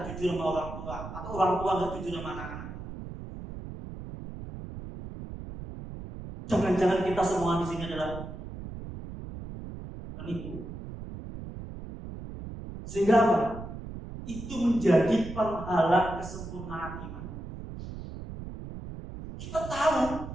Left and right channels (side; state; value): right; noise; rumble, 10 dB below the sound